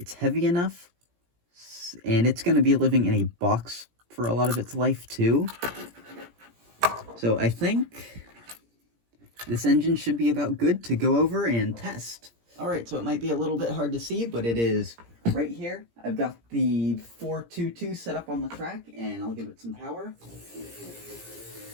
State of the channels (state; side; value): late; left; 17 ms